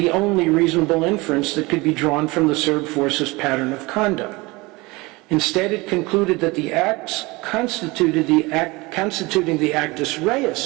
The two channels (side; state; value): left; quieter; 23.5 dB